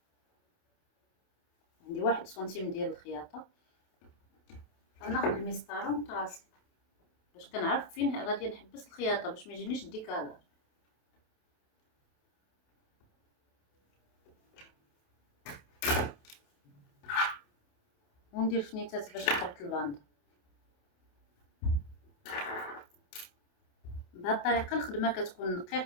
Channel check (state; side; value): late; right; 28 ms